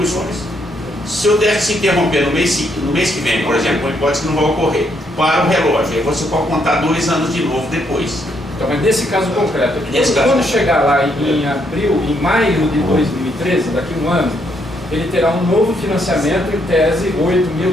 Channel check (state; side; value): normal; both; correlation 0.74